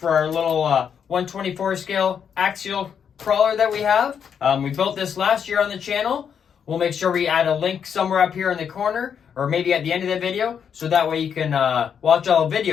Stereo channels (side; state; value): right; quieter; 7.6 dB